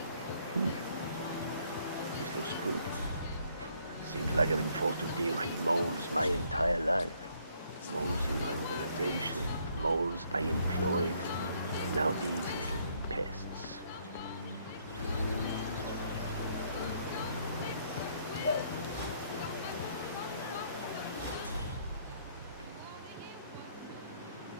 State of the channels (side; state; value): both; inverted; correlation -0.68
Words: This looks good. Seems like I've been forced to deal with moles my entire life. Moles in my organization, moles I employed, and now these little pests.